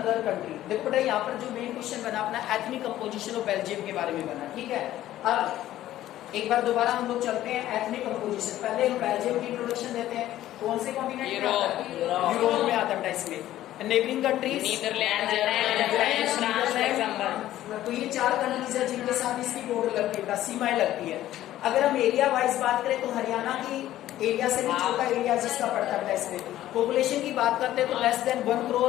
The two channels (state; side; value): quieter; right; 13.7 dB